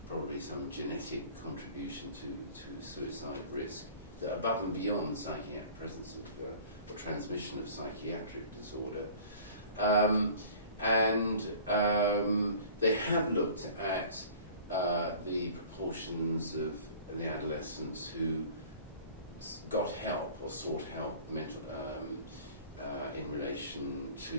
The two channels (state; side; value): inverted; both; correlation -0.45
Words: probably some genetic contribution to suicide risk, that above and beyond presence of or transmission of psychiatric disorder. They have looked at the proportions of the adolescents who got help or sought help in relation